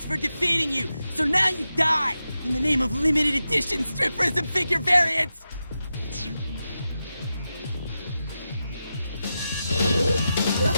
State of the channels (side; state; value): both; inverted; correlation -0.90